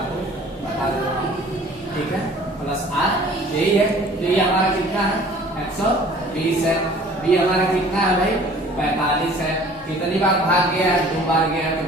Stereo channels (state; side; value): normal; both; correlation 0.50